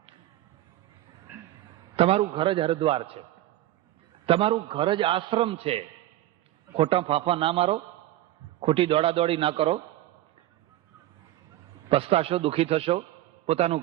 તમારું ઘર જ હરદ્વાર છે, તમારું ઘર જ આશ્રમ છે. ખોટા ફાંફા ના મારો, ખોટી દોડાદોડી ના કરો, પસ્તાશો, દુઃખી થશો. પોતાનું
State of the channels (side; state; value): left; quieter; 14.7 dB